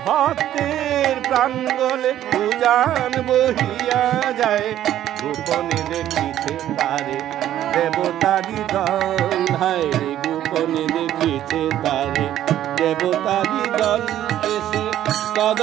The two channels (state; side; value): quieter; left; 12.0 dB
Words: ভক্তের প্রাণ গলে উজান বহিয়া যায় গোপনে দেখিতে তারে দেবতারি দল হায় গোপনে দেখিতে তারে দেবতারি দল এসে